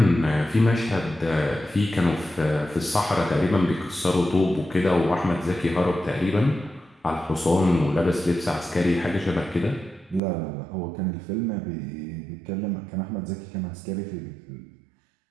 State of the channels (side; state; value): left; drops out; at 10.2 s